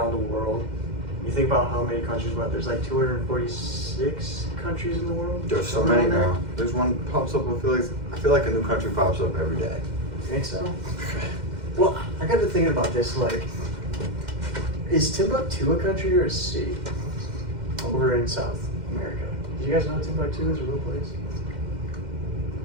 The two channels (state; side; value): late; left; 2.1 ms